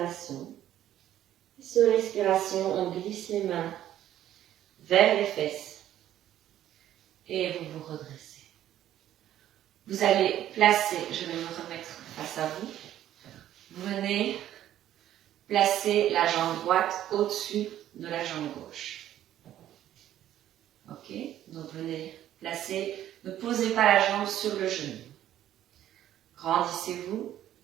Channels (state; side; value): quieter; left; 12.1 dB